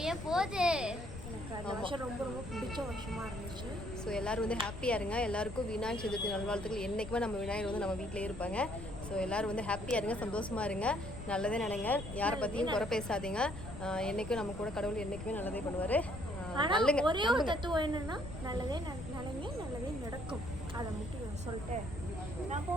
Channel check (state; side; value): noise; left; rumble, 10 dB below the sound